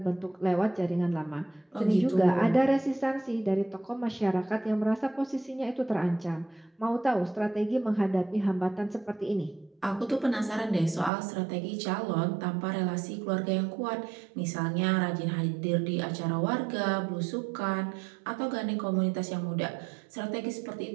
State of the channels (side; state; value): left; drops out; at 11.1 s